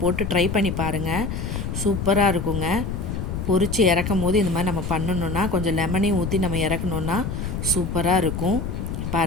போட்டு ட்ரை பண்ணி பாருங்கள். சூப்பராக இருக்குங்க. பொரித்து இறக்கும் போது இந்த மாதிரி நம்ம பண்ணணுன்னா கொஞ்சம் லெமனையும் ஊற்றி நம்ம இறக்கணுன்னா சூப்பராக இருக்கும்.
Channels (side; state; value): left; noise; rumble, 4 dB below the sound